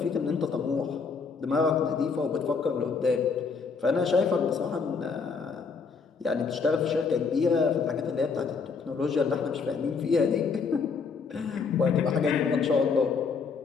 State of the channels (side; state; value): right; quieter; 5.2 dB